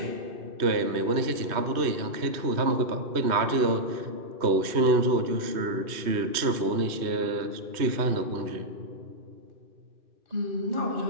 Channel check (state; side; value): late; left; 3.1 ms